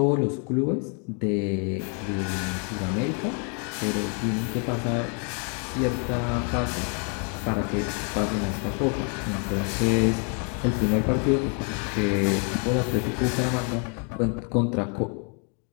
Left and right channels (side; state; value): right; quieter; 39.3 dB